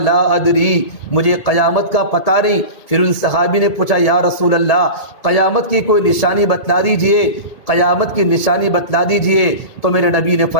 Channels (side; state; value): right; late; 1.8 ms